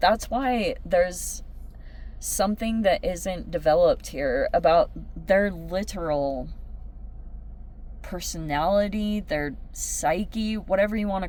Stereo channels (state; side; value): identical; both; correlation 1.00